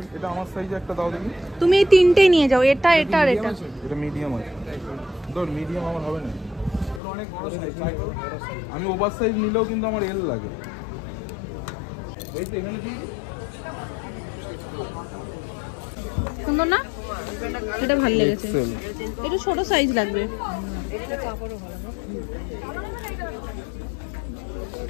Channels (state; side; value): drops out; right; at 7.0 s